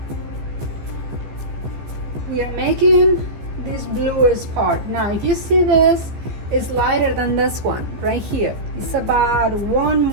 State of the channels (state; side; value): late; left; 14 ms